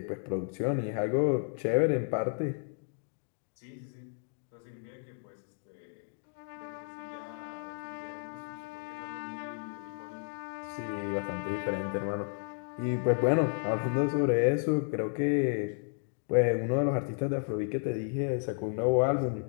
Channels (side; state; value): right; silent; 56 dB below the other